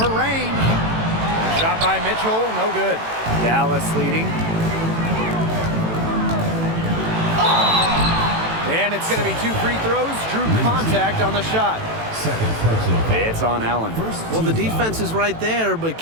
range. Shot by Mitchell, no good. Dallas leading. And it's going to be 2 free throws. Drew contact on the shot. Second personal foul. It's on Allen. Well, the defense is right there, but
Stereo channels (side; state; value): left; late; 18 ms